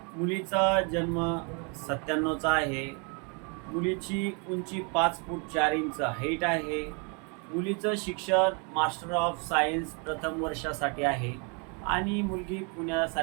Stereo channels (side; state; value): left; quieter; 35.2 dB